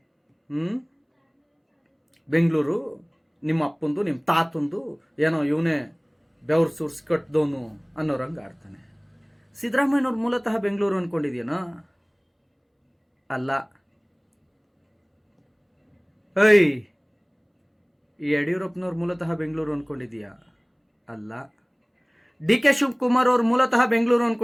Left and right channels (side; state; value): both; identical; correlation 1.00